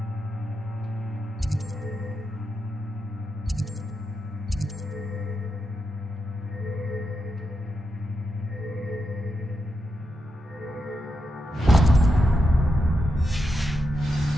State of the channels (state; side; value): normal; both; correlation 0.86